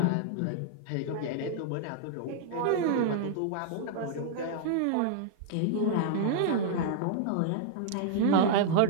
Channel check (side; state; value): both; different; correlation -0.01